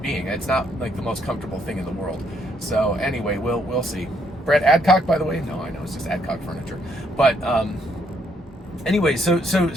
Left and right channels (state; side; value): normal; both; correlation 0.71